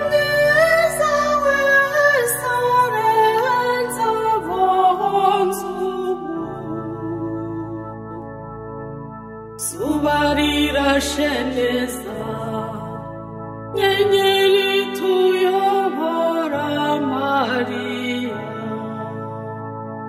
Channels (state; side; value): identical; both; correlation 1.00